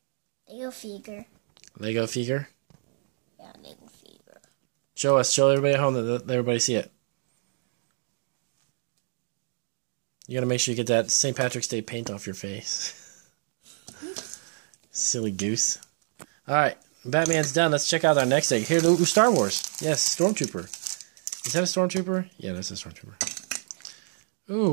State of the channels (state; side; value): silent; left; digital silence